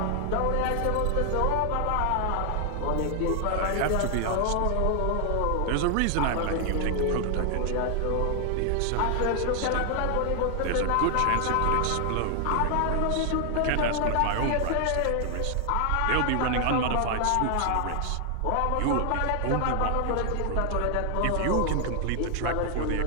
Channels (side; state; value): both; different; correlation 0.00